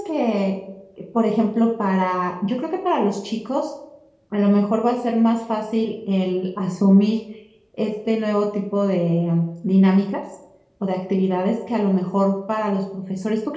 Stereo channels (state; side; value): identical; both; correlation 1.00